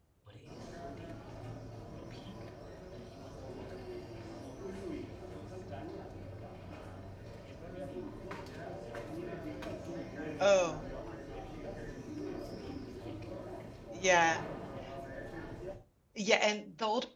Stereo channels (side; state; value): both; identical; correlation 1.00